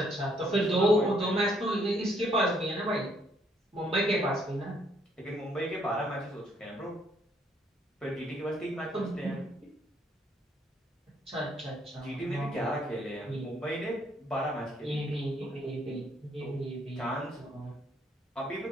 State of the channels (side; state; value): both; normal; correlation 0.68